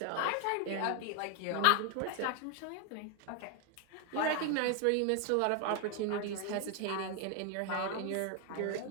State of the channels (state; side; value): different; both; correlation 0.01